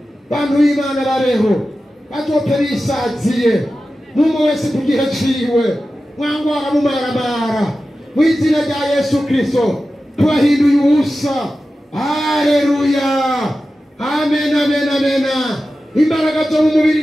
bantu b'Imana babeho bazote bisaziye n'umwe wese ku gihe ciwe mwangwara mumaramara mu izina rya Yesu Kristo tubahinduye ubusa haleluya amen amen amen imbaraga zo mu mubiri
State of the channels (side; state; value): both; normal; correlation 0.93